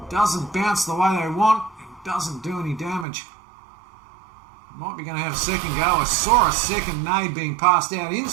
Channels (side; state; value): left; drops out; at 3.1 s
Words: Doesn't bounce the way they want. It doesn't do any damage. Might be going to have a second go. I saw a second nade being passed out.